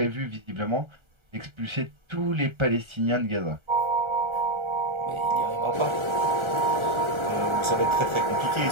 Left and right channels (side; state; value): left; late; 1.3 ms